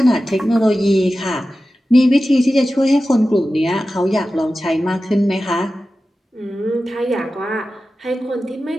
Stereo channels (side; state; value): both; normal; correlation 0.94